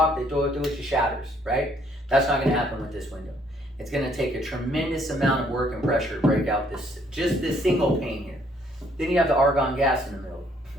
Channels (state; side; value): normal; both; correlation 0.66